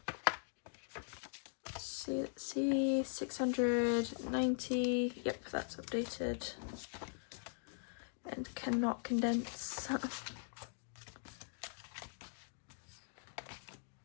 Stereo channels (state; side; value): silent; right; digital silence